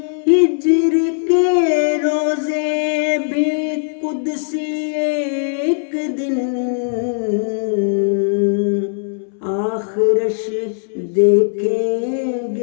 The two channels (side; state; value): right; silent; 66 dB below the other